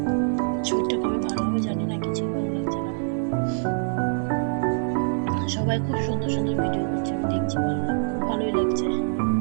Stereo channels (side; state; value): left; silent; digital silence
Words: শরীরটা কবে ভালো হবে জানি না, কিছুই ভালো লাগছে না। সবাই খুব সুন্দর সুন্দর ভিডিও করছে, আমি দেখছি, ভালোই লাগছে।